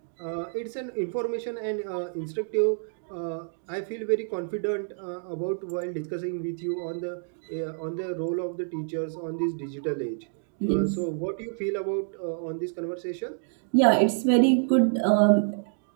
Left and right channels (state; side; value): silent; left; digital silence